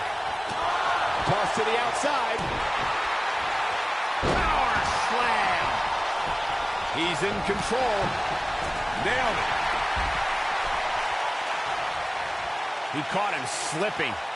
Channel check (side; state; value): both; identical; correlation 1.00